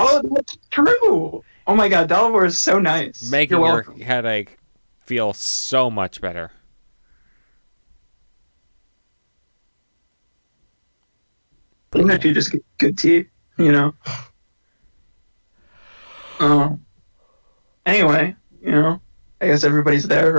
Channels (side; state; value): both; inverted; correlation -1.00